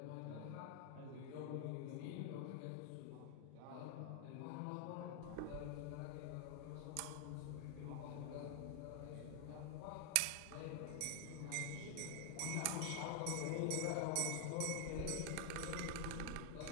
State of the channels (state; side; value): different; both; correlation 0.00